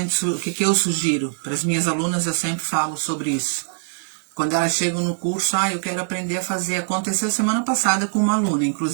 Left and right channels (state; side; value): silent; left; digital silence